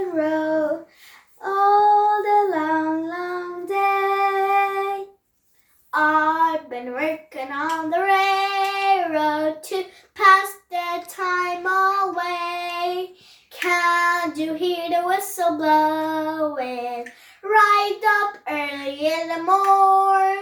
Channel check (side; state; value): both; identical; correlation 1.00